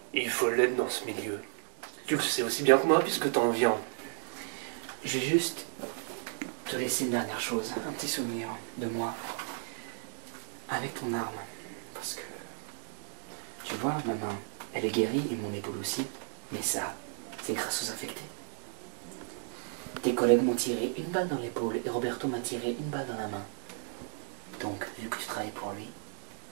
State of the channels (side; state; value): left; silent; 55 dB below the other